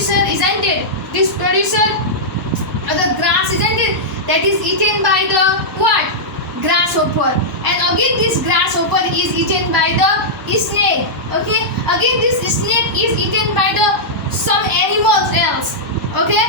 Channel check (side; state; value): both; normal; correlation -0.10